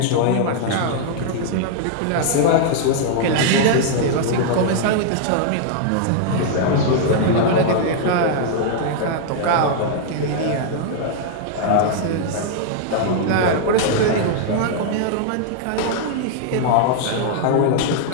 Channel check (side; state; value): both; different; correlation -0.01